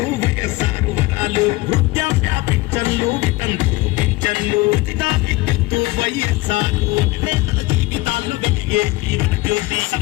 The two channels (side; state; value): right; quieter; 20.7 dB